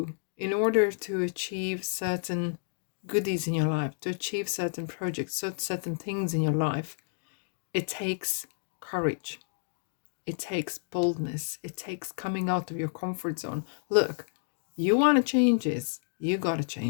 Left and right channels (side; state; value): right; silent; digital silence